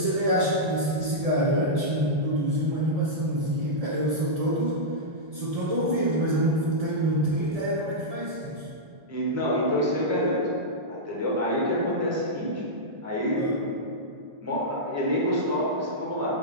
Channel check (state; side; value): late; left; 1.7 ms